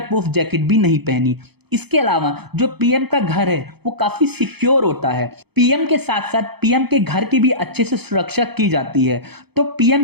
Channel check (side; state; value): left; late; 0.98 ms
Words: प्रूफ जैकेट भी नहीं पहनी। इसके अलावा जो पीएम का घर है वो काफी सिक्योर होता है। पीएम के साथ साथ पीएम के घर की भी अच्छे से सुरक्षा की जाती है। तो पीएम